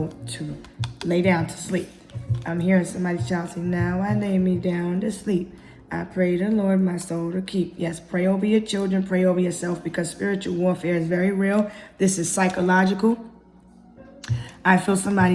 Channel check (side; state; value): both; identical; correlation 1.00